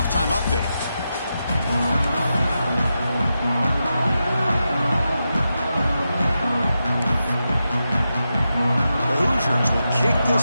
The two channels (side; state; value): both; inverted; correlation -0.88